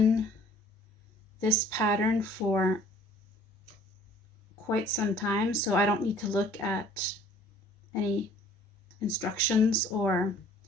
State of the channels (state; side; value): normal; both; correlation 0.54